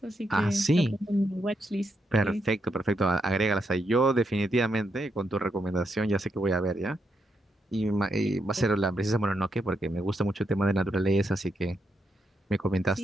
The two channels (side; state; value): both; normal; correlation 0.82